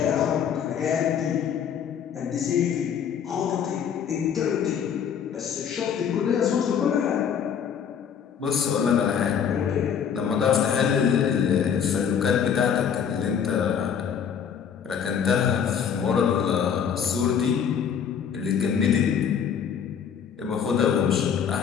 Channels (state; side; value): quieter; right; 7.7 dB